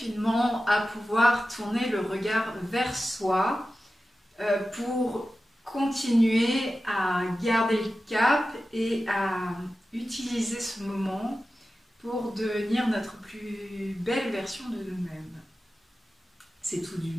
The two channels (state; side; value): normal; both; correlation 0.94